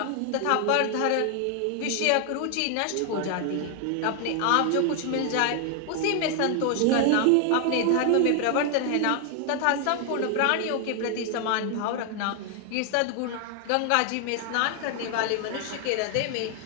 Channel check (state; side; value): different; both; correlation 0.00